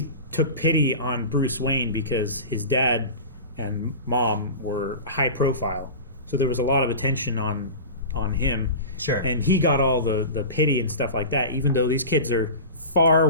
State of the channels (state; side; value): inverted; both; correlation -0.31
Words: took pity on Bruce Wayne because his dad and mom were high profile, so there was a lot of attention on him. Sure. And he got all the pity and stuff like that, even though these kids are